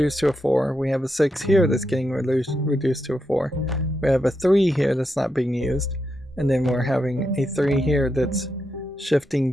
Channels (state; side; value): normal; both; correlation 0.84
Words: to a 4. We have a 6 here that's getting reduced to a 4. We have a 3 here that's not being used. And then we're having a 3 here that's shifting